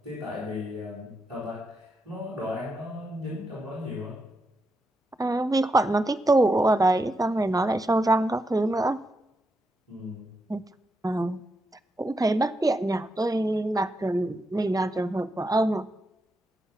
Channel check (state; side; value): normal; both; correlation 0.84